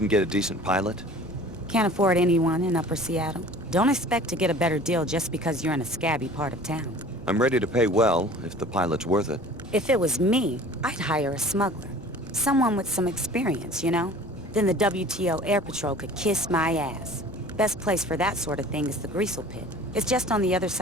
get a decent pilot? Can't afford anyone in Upper Seattle. Don't expect to get a better deal just because you're in a scabby part of town. I'm ready to pay well, if the pilot's worth it. If it was me, I'd hire a smuggler. Someone with some experience, you know? Then the WTO Air Patrol could kiss my ass. Best place for that sort of thing is the Greasel Pit. It's just on the other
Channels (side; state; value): both; normal; correlation 0.45